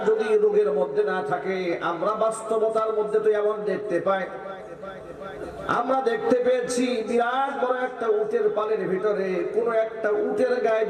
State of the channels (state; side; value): identical; both; correlation 1.00